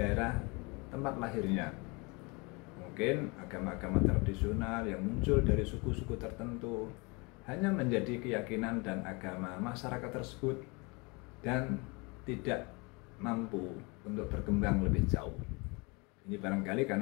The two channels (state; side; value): quieter; right; 28.4 dB